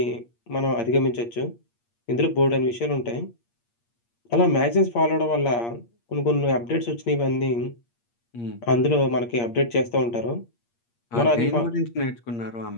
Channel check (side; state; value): right; late; 8.5 ms